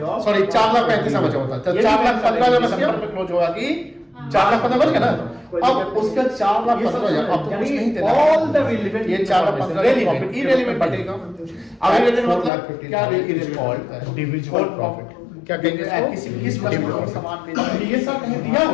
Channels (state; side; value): drops out; right; at 12.5 s